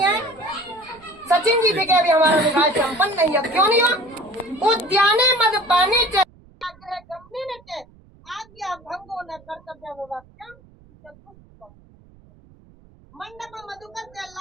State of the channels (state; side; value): noise; right; rumble, 27 dB below the sound